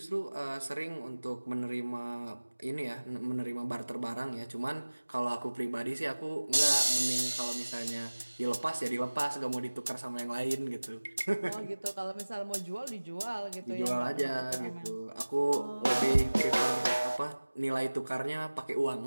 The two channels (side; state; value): both; inverted; correlation -1.00